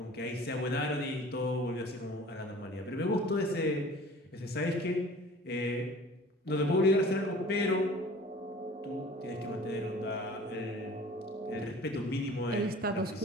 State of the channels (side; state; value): both; normal; correlation 0.46